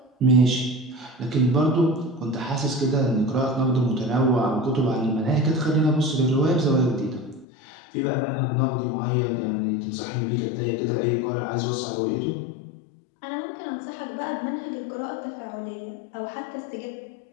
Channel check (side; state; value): right; drops out; at 7.5 s